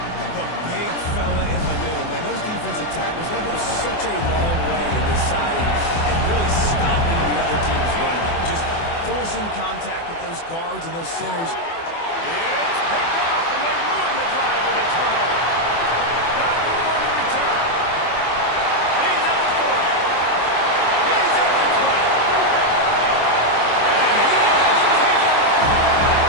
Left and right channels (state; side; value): late; right; 24 ms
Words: The big fella in the middle, man. Those defensive tackles, they go such a long way in deciding and really stopping the other team's run. Just forcing contact with those guards and those centers. It's picked off, and they ruin the drive with a turnover. Got room on the return. He's at the 40. He's at the 20. And he has taken it all the way.